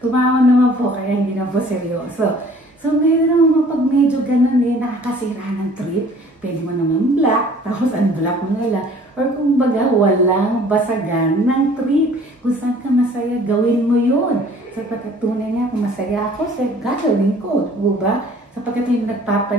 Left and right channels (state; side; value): normal; both; correlation 0.52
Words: naman po, kaya hindi na po seryoso. So, ngayon naman pag medyo ganun nakakasira ng trip, pwede mo naman black, tapos unblock mo na lang. Or kung baga, walang basagan ng trip. Kung saan ka masaya, gawin mo yun. Sapagkat tunay nga, kung masaya ako, gagawin ko. Diba? Sapagkat yung